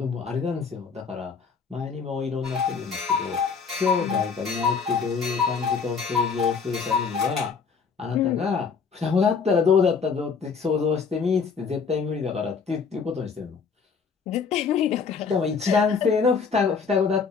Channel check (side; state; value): right; quieter; 5.6 dB